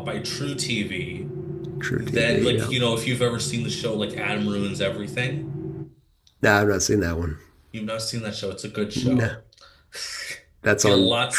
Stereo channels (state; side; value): identical; both; correlation 1.00